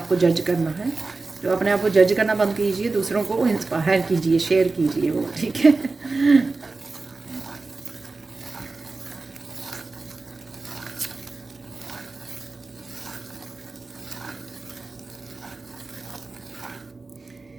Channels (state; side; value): quieter; left; 3.7 dB